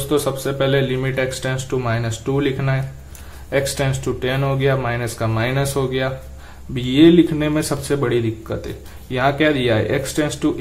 सबसे पहले लिमिट x टेंस टू -2 लिखना है। x टेंस टू 10 हो गया, माइनस का माइनस हो गया। अब ये लिखने में सबसे बड़ी दिक्कत है, यहाँ क्या दिया है? x टेंस टू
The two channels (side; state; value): both; identical; correlation 1.00